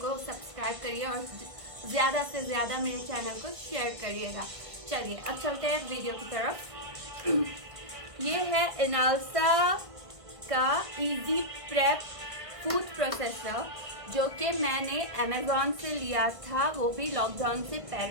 सब्सक्राइब करिए और ज़्यादा से ज़्यादा मेरे चैनल को शेयर करिएगा। चलिए अब चलते हैं वीडियो की तरफ। ये है इनालसा का इजी प्रेप फूड प्रोसेसर, जो कि मैंने अमेज़ॉन से लिया था, वो भी लॉकडाउन से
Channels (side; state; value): left; late; 1.4 ms